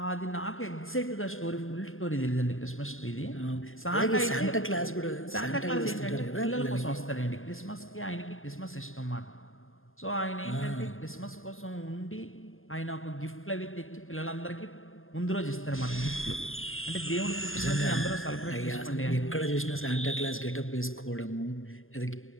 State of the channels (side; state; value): right; late; 0.59 ms